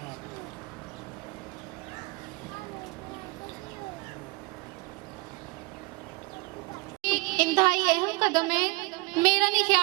انتہائی اہم قدم ہے۔ میرا نہیں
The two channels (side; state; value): left; quieter; 25.9 dB